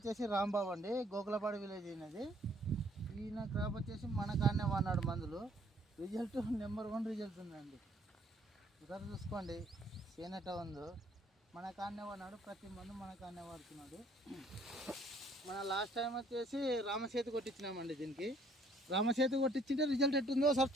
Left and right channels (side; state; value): both; normal; correlation 0.62